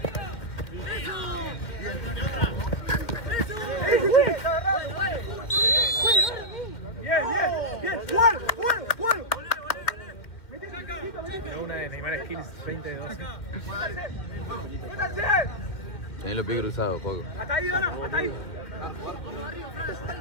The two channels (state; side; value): late; right; 2.3 ms